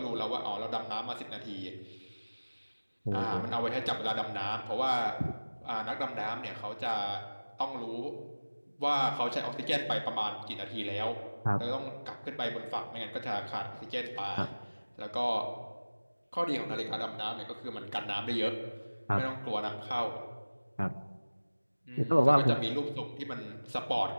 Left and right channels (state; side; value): inverted; both; correlation -1.00